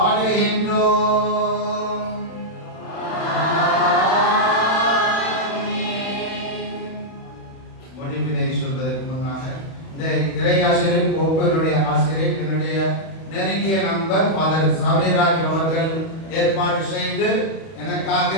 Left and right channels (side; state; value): right; late; 31 ms